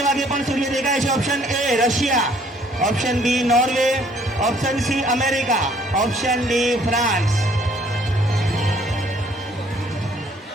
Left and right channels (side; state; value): both; normal; correlation 0.61